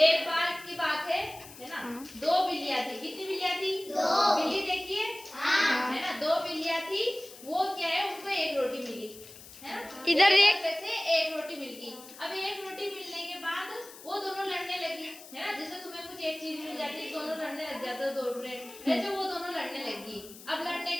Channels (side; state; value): left; noise; hiss, 17 dB below the sound